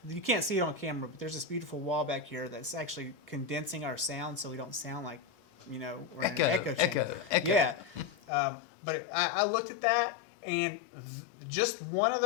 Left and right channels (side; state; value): right; drops out; at 8.2 s